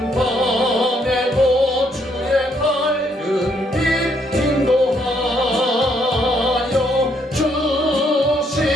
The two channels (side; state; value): both; normal; correlation 0.71